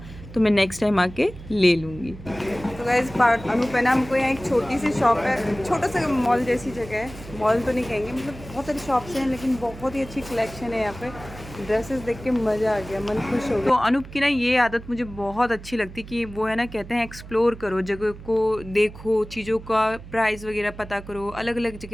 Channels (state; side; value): noise; right; hum, 15 dB below the sound